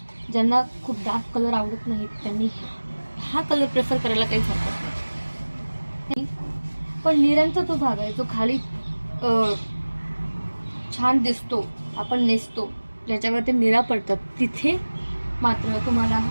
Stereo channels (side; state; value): both; inverted; correlation -1.00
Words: ज्यांना खूप डार्क कलर आवडत नाही त्यांनी हा कलर प्रेफर करायला काहीच हरकत नाही. पण निऱ्यांचा जो भाग आहे जो खाली छान दिसतो, आपण नेसतो, ज्याच्यावर ते निरा पडतात, तिथे मात्र तुम्हाला